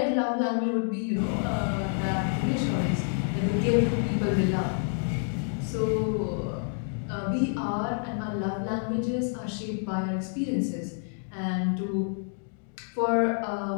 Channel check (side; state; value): right; silent; 59 dB below the other